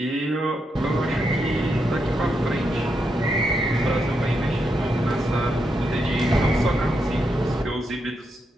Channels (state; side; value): normal; both; correlation 0.82